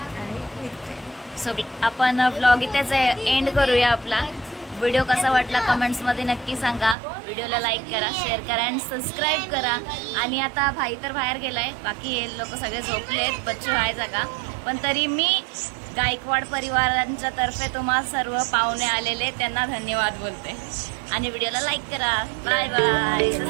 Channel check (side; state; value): left; drops out; at 7.0 s